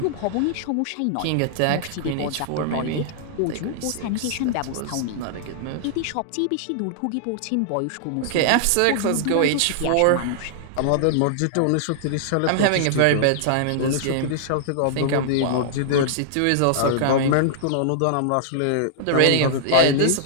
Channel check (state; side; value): different; both; correlation -0.01